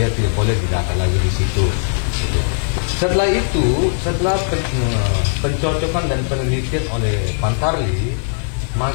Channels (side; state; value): right; silent; 67 dB below the other